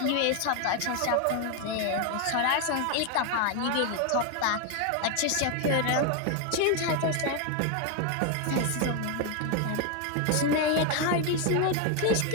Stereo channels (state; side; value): different; both; correlation 0.01